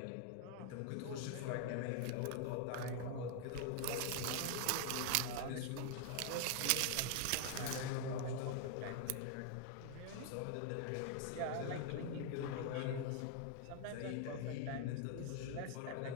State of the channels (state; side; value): different; both; correlation 0.00